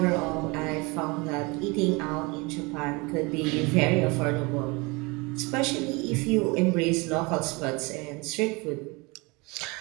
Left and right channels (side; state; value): left; quieter; 26.6 dB